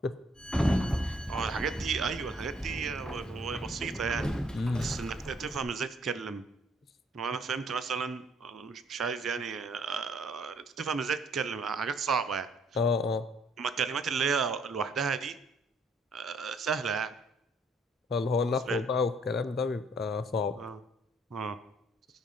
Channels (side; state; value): both; normal; correlation 0.64